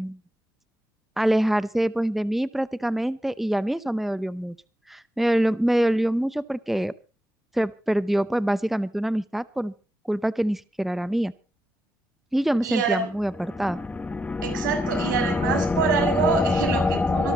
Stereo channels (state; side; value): normal; both; correlation 0.84